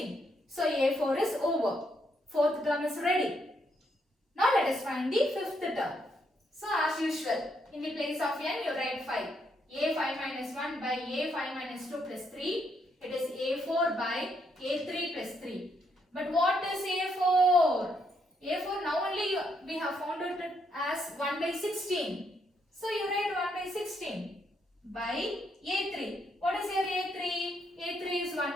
So A4 is over. Fourth term is ready. Now let us find the fifth term. So as usual, in the place of n you write 5. A5 minus 1 by A5 minus 2 plus 3. It is A4 by A3 plus 3. But what is A4? A4 now only we have found it as 1 by 16. So you write 1 by 16 by A3. What is your A3? A3 is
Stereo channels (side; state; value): both; normal; correlation 0.76